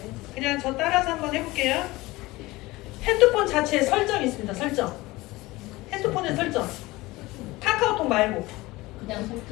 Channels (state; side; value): quieter; right; 20.2 dB